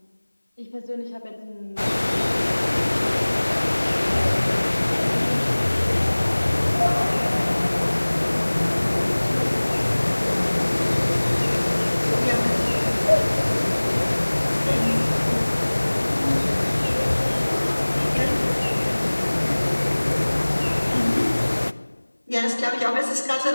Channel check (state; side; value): inverted; both; correlation -1.00